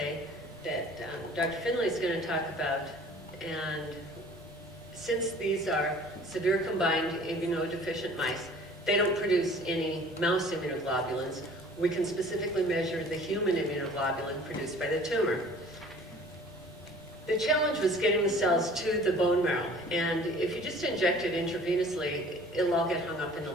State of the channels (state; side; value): normal; both; correlation 0.49